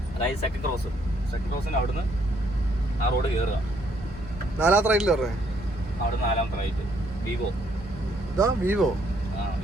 അതായത് സെക്കൻഡ് ക്രോസിന് അവിടുന്ന് ആ റോഡ് കയറുക. നാലാമത്തെ റൈറ്റിൽ പറഞ്ഞേ. അവിടെ നാലാമത്തെ റൈറ്റ്. വിവോ. ഇതാ വിവോ.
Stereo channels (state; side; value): normal; both; correlation 0.69